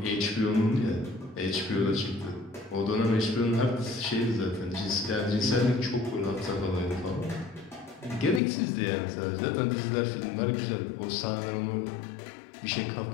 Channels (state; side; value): drops out; right; at 8.4 s